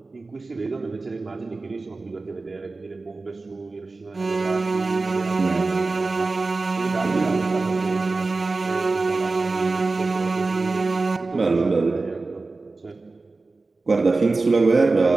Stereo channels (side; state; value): left; quieter; 3.6 dB